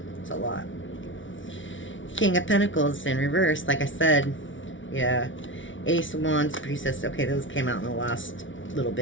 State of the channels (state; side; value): late; right; 0.56 ms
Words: It's a lot. King of Pentacles in reverse, like I said. Yeah. Ace of Wands, Priestess. Okay, those came out in the last little